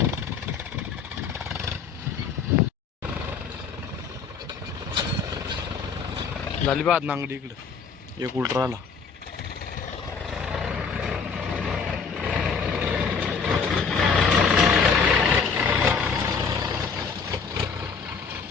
झाली बा नांगडी. इकडं एक उलट राहिला.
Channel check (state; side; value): quieter; right; 5.6 dB